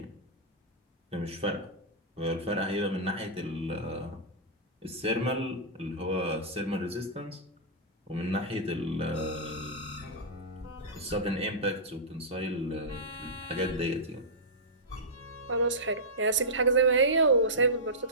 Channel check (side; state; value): both; normal; correlation -0.13